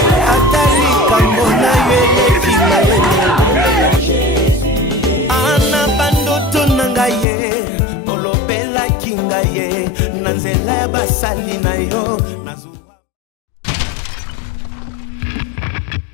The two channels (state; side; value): drops out; right; at 7.2 s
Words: Atali kambona yele kina yele ana bandoto nangaye olobela kingaye nanzela ya basali na yo nazuwa.